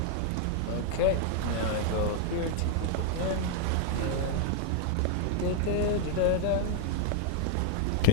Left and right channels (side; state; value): both; different; correlation 0.00